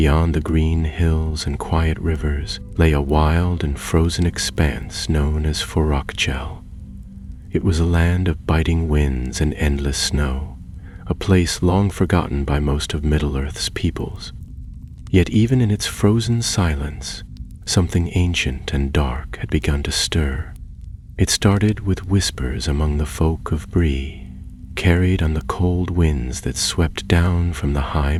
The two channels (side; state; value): both; identical; correlation 1.00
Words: the green hills and quiet rivers, lay a wild and frozen expanse known as Forokchel. It was a land of biting winds and endless snow, a place long forgotten by most of Middle-earth's peoples. Yet even in its frozen silence, something ancient and dark had begun to stir. It started with whispers among the folk of Bree, carried on the cold winds that swept down from the high